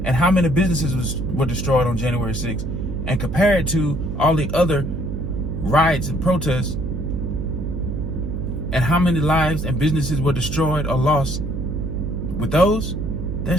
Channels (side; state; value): right; noise; hum, 4 dB below the sound